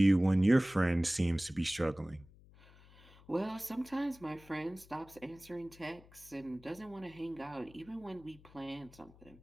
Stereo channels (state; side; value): noise; left; hum, 24 dB below the sound